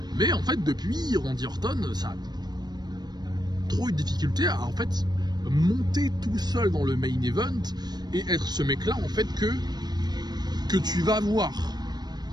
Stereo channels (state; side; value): late; left; 0.20 ms